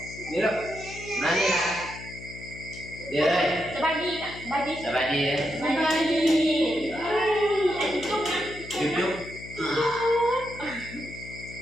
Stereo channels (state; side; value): noise; left; hum, 14 dB below the sound